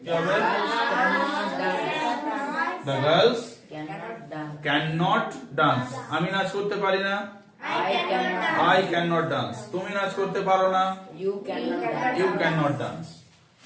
কি হবে, the girls cannot dance. আমি নাচ করতে পারি না, I cannot dance. তুমি নাচ করতে পারো না, you cannot dance.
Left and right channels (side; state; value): both; identical; correlation 1.00